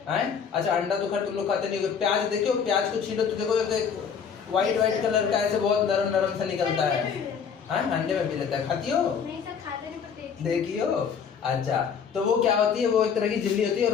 हैं? अच्छा, अंडा तो खैर तुम लोग खाते नहीं हो। प्याज देखे हो? प्याज को छीलो तो देखो व्हाइट कलर का ऐसे बहुत नरम नरम सा निकलता है। हाँ, अंडे में भी रहता है, खाती हो? नहीं सर, खाते नहीं पर देखी हो? अच्छा, तो वो क्या होती है, वो एक तरह की झिल्ली होती है,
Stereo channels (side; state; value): right; quieter; 6.8 dB